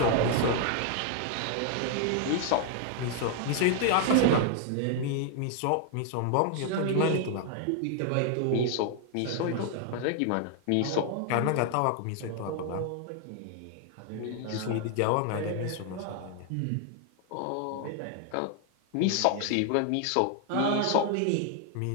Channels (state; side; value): different; both; correlation 0.00